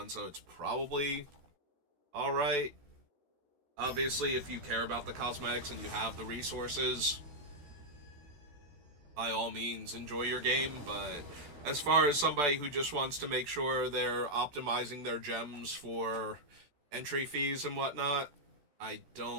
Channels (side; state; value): left; late; 14 ms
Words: so it's probably alright. Obviously, if you care about the cosmetics and you have the resources, by all means, enjoy your game, but as far as somebody who just wants to make sure they're optimizing their gems for entry fees and whatnot, I